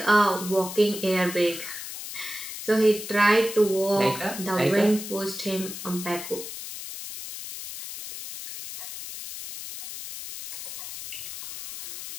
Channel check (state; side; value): noise; left; hiss, 9 dB below the sound